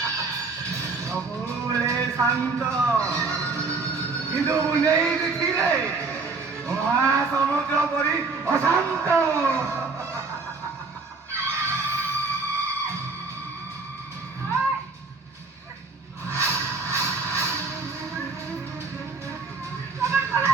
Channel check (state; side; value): quieter; left; 4.2 dB